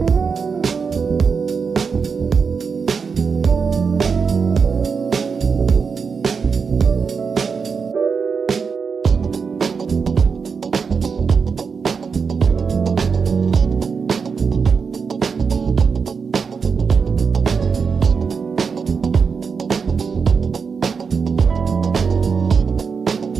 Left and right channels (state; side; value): quieter; left; 5.6 dB